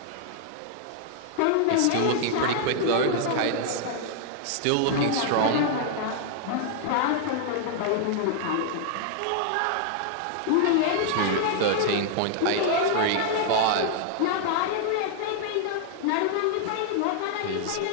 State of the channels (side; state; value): both; different; correlation -0.01